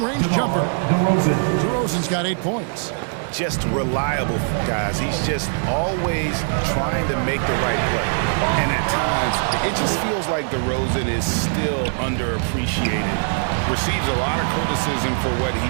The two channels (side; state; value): left; silent; 65 dB below the other